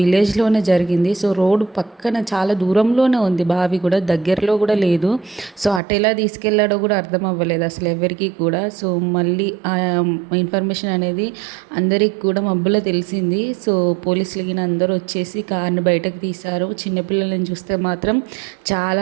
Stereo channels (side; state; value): left; drops out; at 5.8 s